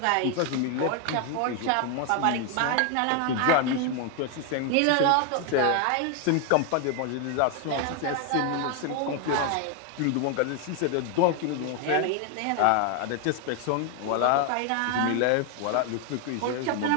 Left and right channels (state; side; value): different; both; correlation 0.01